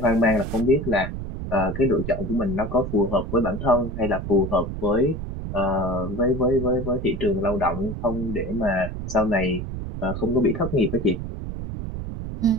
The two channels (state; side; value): noise; right; rumble, 6 dB below the sound